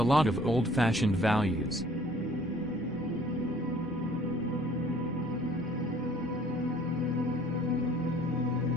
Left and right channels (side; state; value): both; normal; correlation 0.55